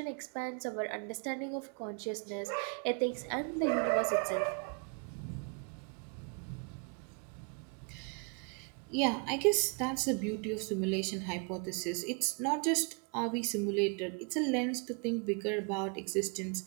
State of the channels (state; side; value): quieter; left; 36.9 dB